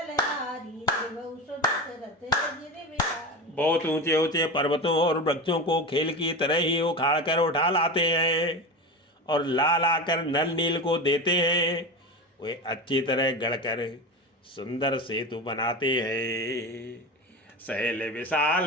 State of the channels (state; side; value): normal; both; correlation 0.25